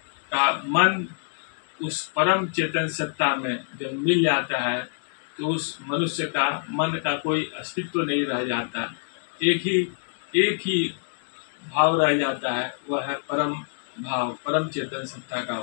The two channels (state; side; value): silent; right; digital silence